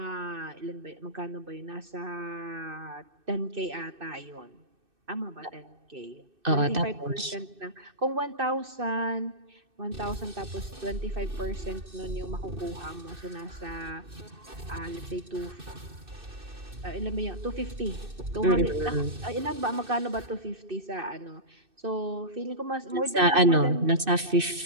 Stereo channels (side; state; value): left; late; 2.6 ms